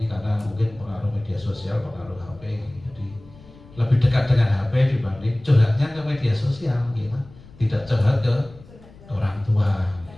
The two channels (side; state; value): left; noise; rumble, 22 dB below the sound